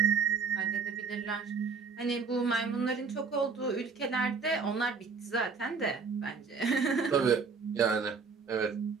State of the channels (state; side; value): quieter; left; 5.2 dB